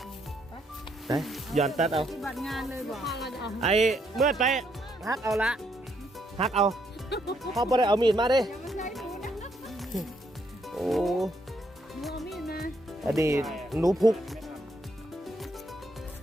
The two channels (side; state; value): both; normal; correlation 0.74